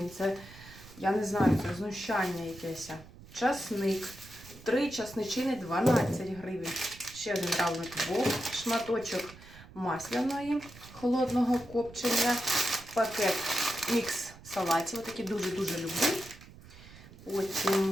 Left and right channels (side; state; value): right; noise; rumble, 19 dB below the sound